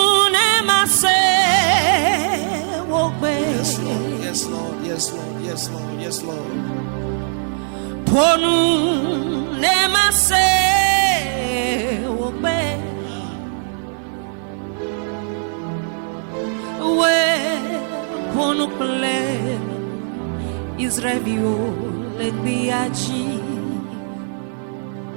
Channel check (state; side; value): silent; left; 66 dB below the other